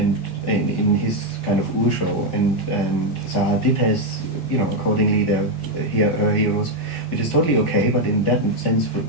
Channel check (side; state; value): both; normal; correlation 0.02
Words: in his kind of show, and Zaha Hadid has, you know, accordingly her heroes, which is totally okay. But in that sense,